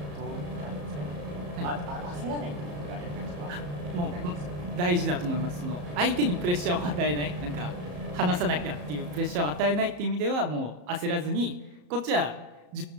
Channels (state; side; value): late; left; 34 ms